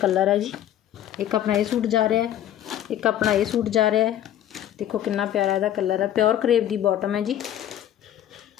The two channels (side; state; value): right; quieter; 11.4 dB